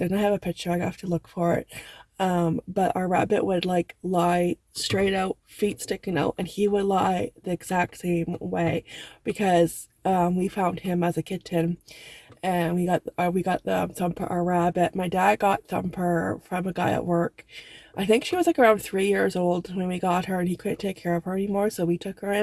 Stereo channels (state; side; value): identical; both; correlation 1.00